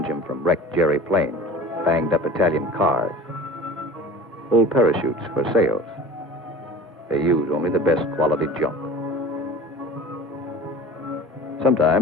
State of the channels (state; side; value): normal; both; correlation 0.39